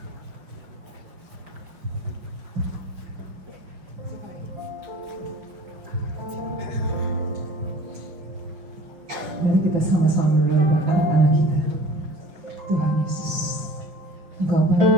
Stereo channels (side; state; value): left; late; 5.6 ms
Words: Mari kita sama-sama berdoa buat anak-anak kita. Tuhan Yesus, Engkau